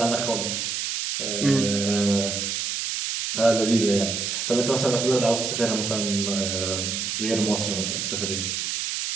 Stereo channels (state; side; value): noise; right; hiss, 2 dB below the sound